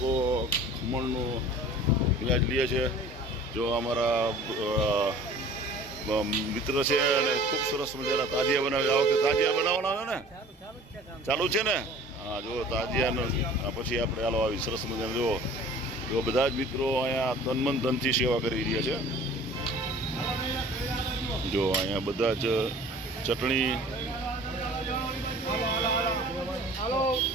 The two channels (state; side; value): normal; both; correlation 0.46